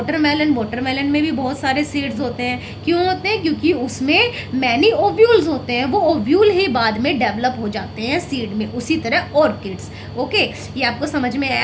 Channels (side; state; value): both; identical; correlation 1.00